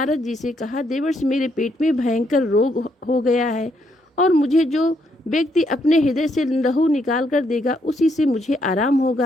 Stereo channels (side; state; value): both; normal; correlation 0.74